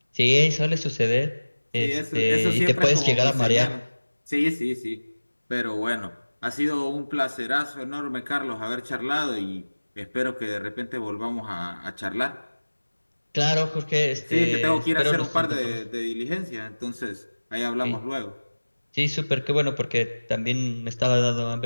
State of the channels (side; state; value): both; inverted; correlation -1.00